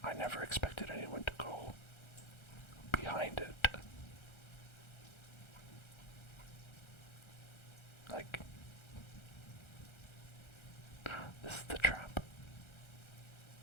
I never expected anyone to go behind it. Like, this is the trap.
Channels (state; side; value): late; right; 1.3 ms